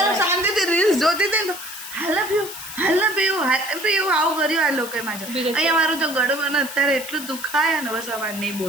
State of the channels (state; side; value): noise; left; hiss, 11 dB below the sound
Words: શાંતિથી રીલ્સ જોતી હતી ને તો હાલ પીવું આવું કર્યું આ લોકોએ મારે અહીંયા મારું તો ગળું મને અત્યારે એટલું દુખાય ને બસ અમારે નહીં